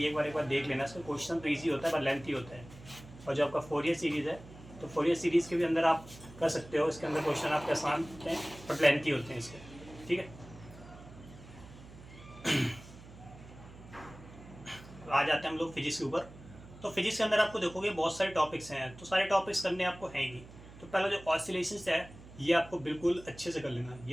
एक बार देख लेना, इसका क्वेश्चन तो ईजी होता है पर लेंथी होता है। और जो आपका फोरियर सीरीज़ है तो फोरियर सीरीज़ के भी अंदर आप कर सकते हो, इसके अंदर क्वेश्चन आपके आसान होते हैं बट लेंथी होते हैं इसके। ठीक है, आ जाते हैं हम लोग फिजिक्स के ऊपर। तो फिजिक्स के अंदर आपको देखोगे बहुत सारे टॉपिक्स हैं, तो सारे टॉपिक्स करने आपको हैं ही। तो पहला जो ऑसिलेशंस है ये आपको बिल्कुल अच्छे से कर लेना है,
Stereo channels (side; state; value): right; noise; hum, 18 dB below the sound